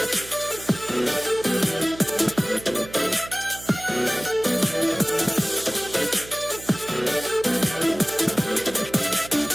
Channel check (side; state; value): right; noise; hum, 16 dB below the sound